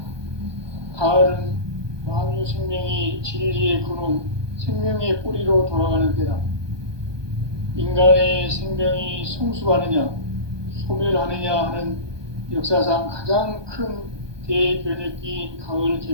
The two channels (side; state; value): left; late; 1.2 ms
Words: 가을은 만유 생명이 진리의 근원, 생명의 뿌리로 돌아가는 때다. 인간의 생명이 성숙하느냐, 소멸하느냐 하는 역사상 가장 큰 대변혁기인 가을